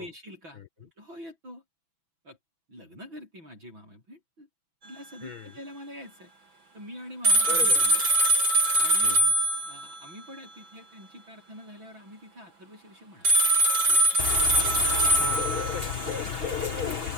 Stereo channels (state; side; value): late; left; 6.1 ms